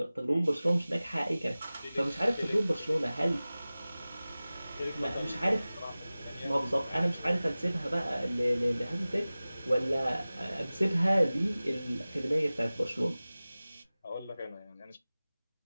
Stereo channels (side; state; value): both; inverted; correlation -0.97